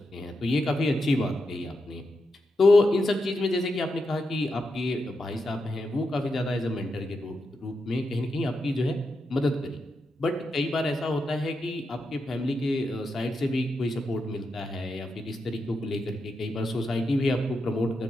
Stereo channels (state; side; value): normal; both; correlation 0.86